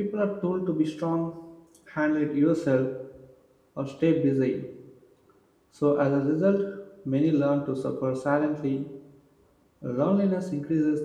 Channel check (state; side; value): identical; both; correlation 1.00